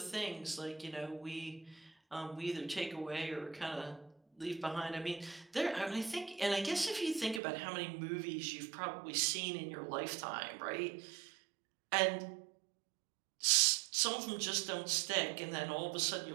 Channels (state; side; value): drops out; left; at 7.4 s